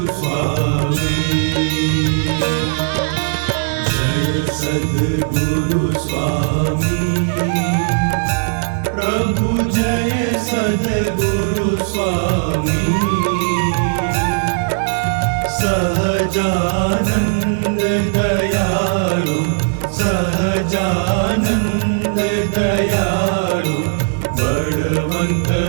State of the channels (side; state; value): left; silent; digital silence